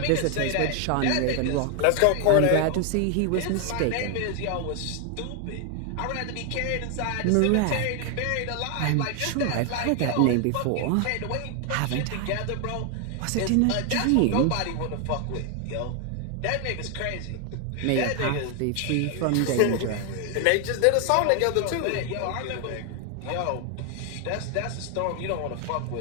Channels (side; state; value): both; different; correlation 0.00